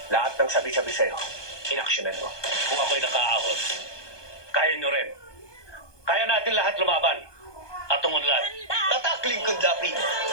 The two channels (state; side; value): late; right; 1.2 ms